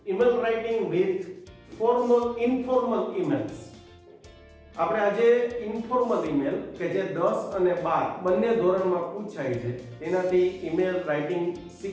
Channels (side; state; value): both; identical; correlation 1.00